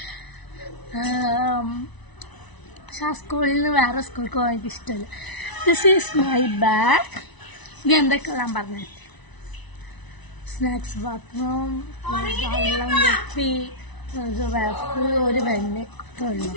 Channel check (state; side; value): late; right; 1.0 ms